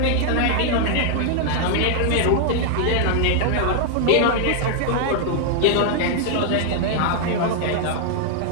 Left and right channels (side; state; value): both; different; correlation 0.00